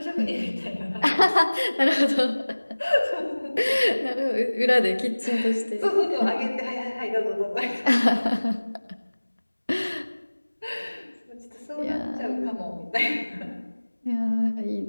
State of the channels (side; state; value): both; inverted; correlation -1.00